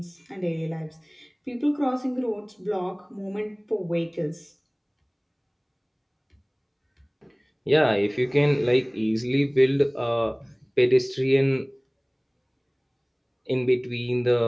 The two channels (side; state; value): both; identical; correlation 1.00